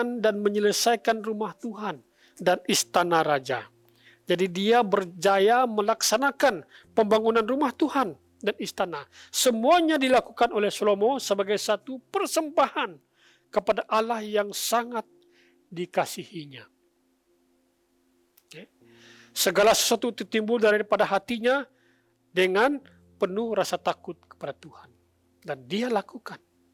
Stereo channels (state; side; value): identical; both; correlation 1.00